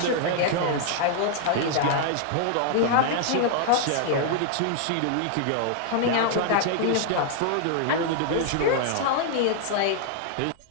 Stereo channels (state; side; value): different; both; correlation 0.00